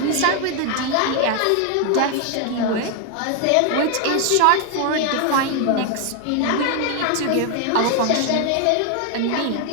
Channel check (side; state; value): both; different; correlation 0.01